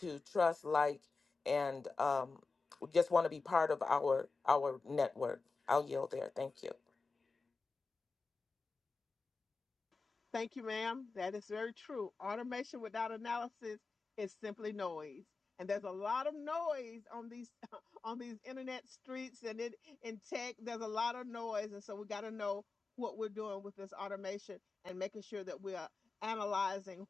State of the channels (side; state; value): right; quieter; 4.2 dB